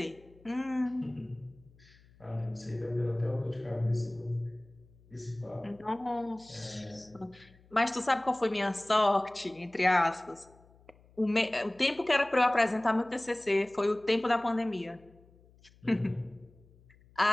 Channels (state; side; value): noise; left; hum, 28 dB below the sound